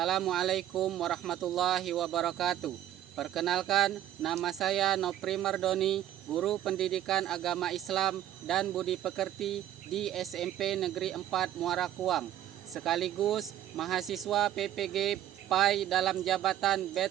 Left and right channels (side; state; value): left; quieter; 12.0 dB